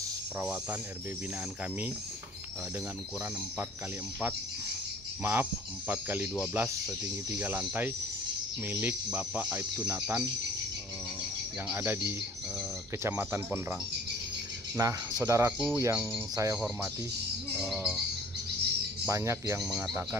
perawatan RB binaan kami dengan ukuran 4x12 setinggi 3 lantai milik Bapak Aibtu Nathan yang ada di Kecamatan Pondrang. Nah, saudaraku yang saya hormati, banyak yang mengatakan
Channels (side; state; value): both; normal; correlation 0.51